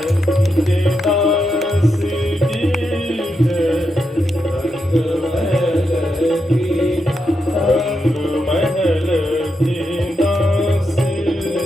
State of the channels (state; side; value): normal; both; correlation 0.84